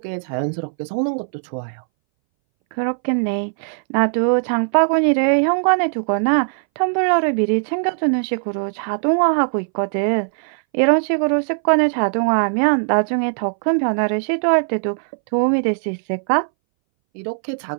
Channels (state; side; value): silent; left; 63 dB below the other